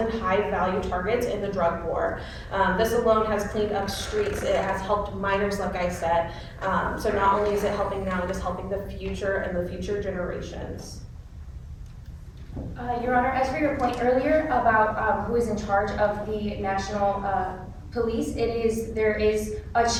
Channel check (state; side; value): identical; both; correlation 1.00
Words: high-value targets in the drug war. This alone has cleaned up streets. It has helped minors, like I said. So not only is it helping now, it is helping the future and the future generations. Your Honor, as for your point earlier about who is in charge of the national police, there is a